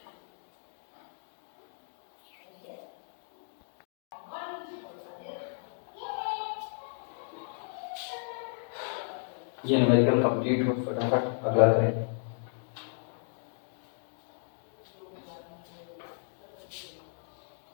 ये न्यूमेरिकल कंप्लीट हो, फटाफट अगला करें।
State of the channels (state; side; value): silent; right; digital silence